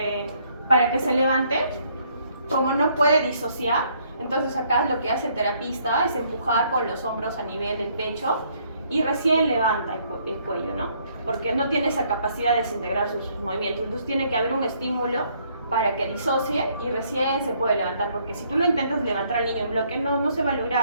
para que se levante, como no puede disociar, entonces acá lo que hace el terapista es empujar con los hombros a nivel del pecho y recién levanta el cuello, ¿no? Porque no tiene esa capacidad de desintegrar sus movimientos, entonces tiene que haber un estímulo para que disocie y recién se puede levantar, porque si tú lo intentas levantar al niño en bloque, no se va a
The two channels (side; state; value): both; inverted; correlation -0.67